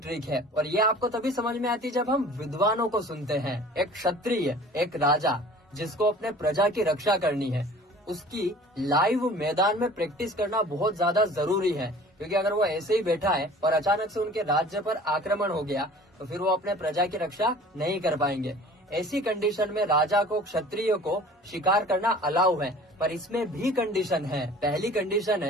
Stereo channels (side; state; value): both; normal; correlation 0.46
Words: है। और ये आपको तभी समझ में आती है जब हम विद्वानों को सुनते हैं। एक क्षत्रिय, एक राजा जिसको अपने प्रजा की रक्षा करनी है, उसकी लाइव मैदान में प्रैक्टिस करना बहुत ज्यादा जरूरी है। क्योंकि अगर वो ऐसे ही बैठा है और अचानक से उनके राज्य पर आक्रमण हो गया तो फिर वो अपने प्रजा की रक्षा नहीं कर पाएंगे। ऐसी कंडीशन में राजा को, क्षत्रिय को शिकार करना अलाउ है, पर इसमें भी कंडीशन है। पहली कंडीशन